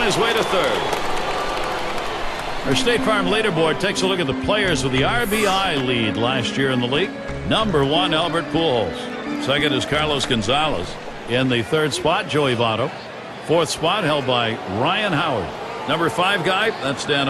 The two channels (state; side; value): identical; both; correlation 1.00